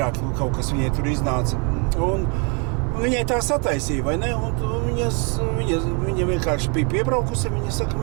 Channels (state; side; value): quieter; left; 34.9 dB